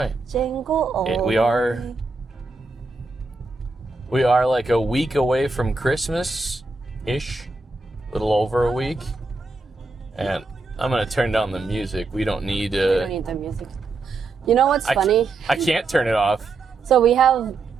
Jingle all We the are way. like a week away from Christmas-ish, a little over a week. And I'm going to turn down the music. We don't need... We don't need the music. You know what's funny? I can't turn it off. So we have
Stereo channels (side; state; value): left; quieter; 3.6 dB